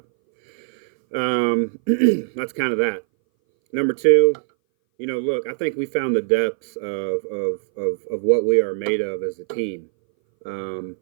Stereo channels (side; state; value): left; silent; 60 dB below the other